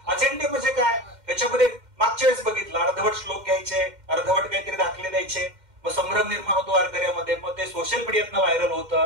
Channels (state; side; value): late; left; 2.1 ms